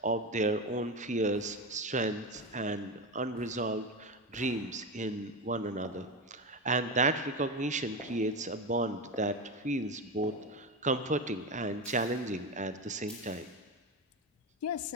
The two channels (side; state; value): both; normal; correlation 0.18